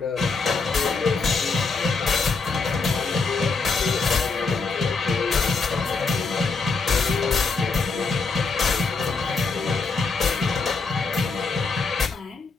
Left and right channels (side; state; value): right; quieter; 4.4 dB